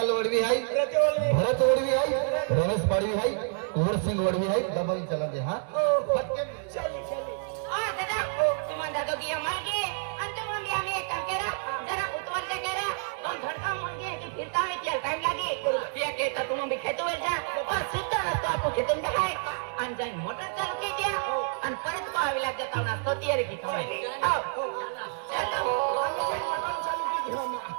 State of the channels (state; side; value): silent; left; 57 dB below the other